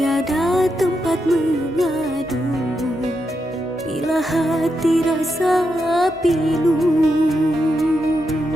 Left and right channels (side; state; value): both; normal; correlation 0.84